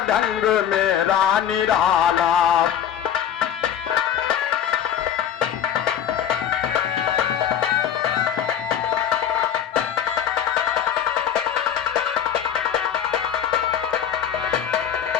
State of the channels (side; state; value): right; quieter; 9.5 dB